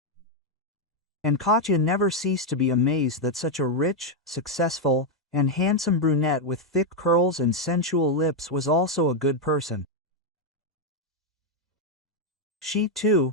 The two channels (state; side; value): normal; both; correlation 0.01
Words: And Katya never ceased to be amazed that such a rich, successful, and handsome brunette with thick curls and sensual lips was also a good person. She, too,